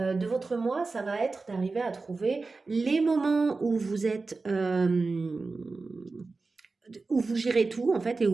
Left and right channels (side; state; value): left; quieter; 3.9 dB